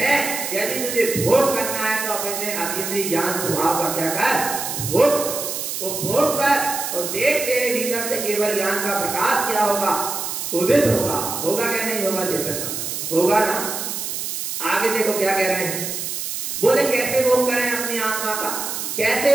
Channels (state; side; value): noise; right; hiss, 4 dB below the sound